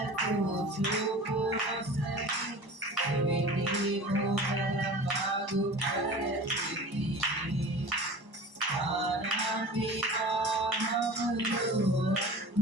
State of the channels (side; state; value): left; late; 1.0 ms